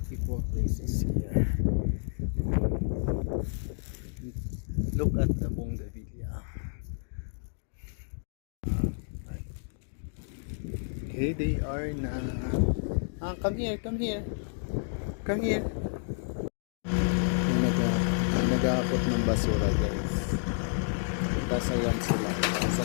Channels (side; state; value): right; silent; digital silence